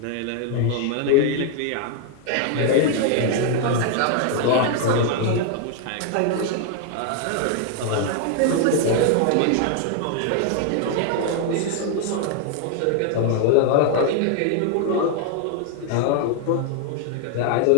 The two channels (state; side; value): different; both; correlation 0.00